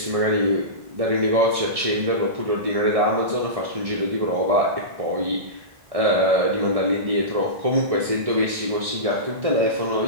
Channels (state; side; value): late; left; 1.6 ms